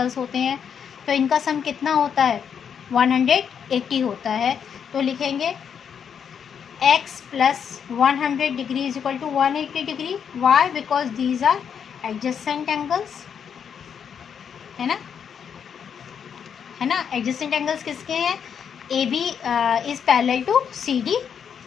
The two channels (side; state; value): right; quieter; 7.5 dB